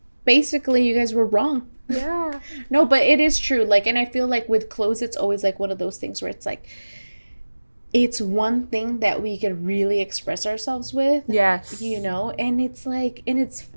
basically, you guys were wrong. Yeah. No, but it is true. Like, and I feel like with clothes, it's always like one of those things where it's like, it's one thing that we can really express ourselves with. Yes. And it's like, and it's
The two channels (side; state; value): both; inverted; correlation -1.00